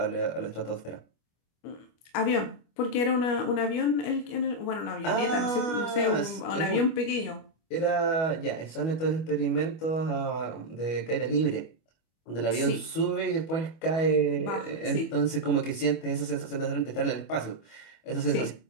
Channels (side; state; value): right; late; 25 ms